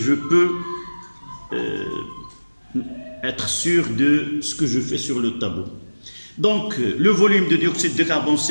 peux être sûr de ce que je fais sur le tableau. Donc, le volume de dioxyde de carbone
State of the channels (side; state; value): both; inverted; correlation -1.00